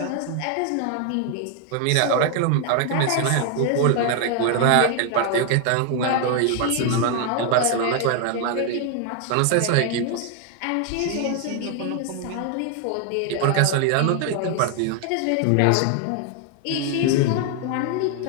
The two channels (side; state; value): both; different; correlation 0.00